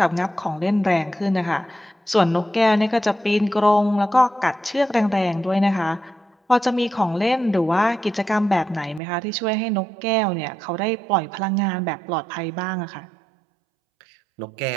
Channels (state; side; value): drops out; left; at 9.0 s